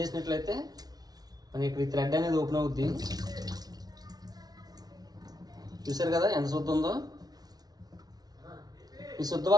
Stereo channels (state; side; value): late; left; 0.19 ms